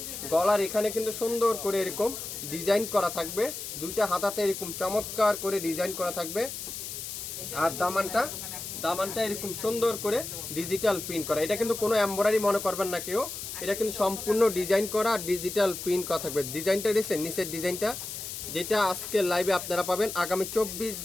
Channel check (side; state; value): left; noise; hiss, 7 dB below the sound